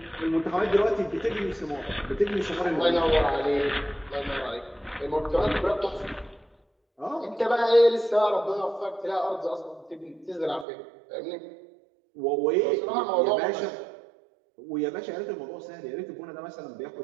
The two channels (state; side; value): drops out; left; at 10.7 s